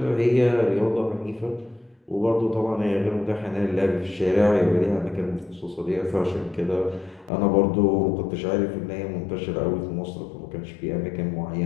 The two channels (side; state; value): right; drops out; at 7.3 s